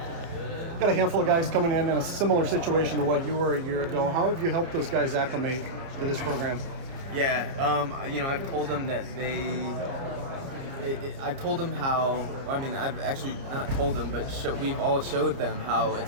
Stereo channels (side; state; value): left; late; 30 ms